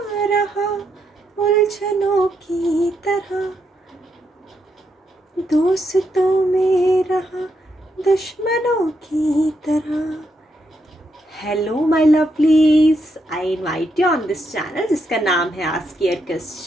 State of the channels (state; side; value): normal; both; correlation 0.80